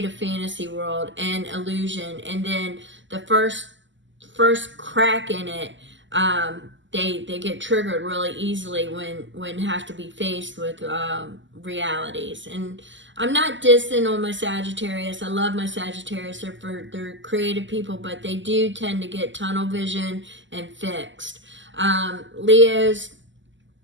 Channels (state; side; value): late; left; 0.54 ms